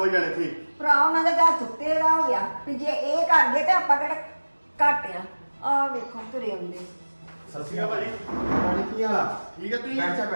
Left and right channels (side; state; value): both; inverted; correlation -1.00